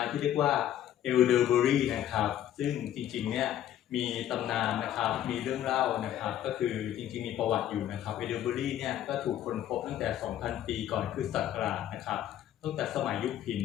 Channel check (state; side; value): quieter; right; 11.5 dB